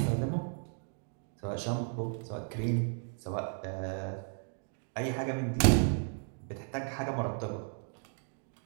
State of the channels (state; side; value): silent; left; 55 dB below the other